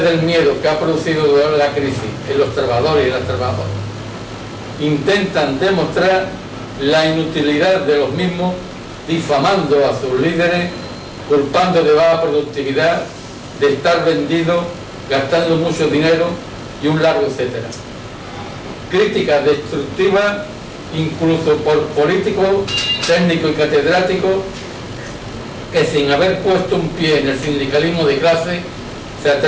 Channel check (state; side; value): identical; both; correlation 1.00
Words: miedo que ha producido durante la crisis en los trabajadores y las trabajadoras. Intentan demostrar la inutilidad de los mismos, difamando a sus líderes, culpando de baja productividad, de estar vendidos, gastando mucho dinero y un largo etcétera. Críticas destructivas incluso por políticos, técnicos y catedráticos que sin haber puesto un pie en el sindicalismo de clase se